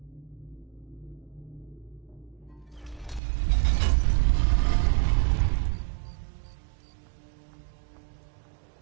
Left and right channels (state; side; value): drops out; left; at 3.2 s